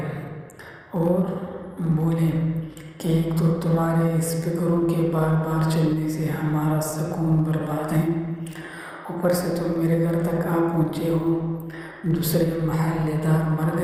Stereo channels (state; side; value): identical; both; correlation 1.00